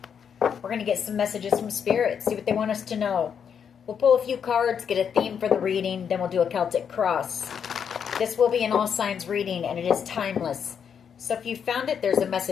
We're going to get some messages from Spirit, see what they want us to know. We'll pull a few cards, get a theme for the reading, then we'll do a Celtic cross. This will be an all signs reading, and it is timeless. So if you found it, there's a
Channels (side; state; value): right; quieter; 7.5 dB